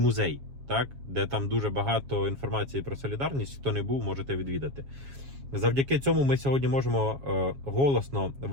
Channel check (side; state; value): left; late; 7.3 ms